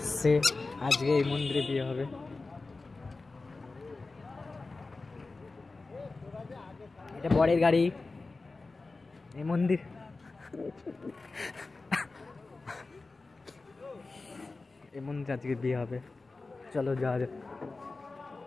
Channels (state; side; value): quieter; right; 3.6 dB